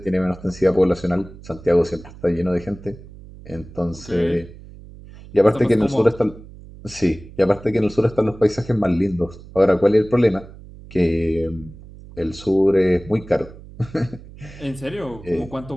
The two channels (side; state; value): right; noise; hum, 18 dB below the sound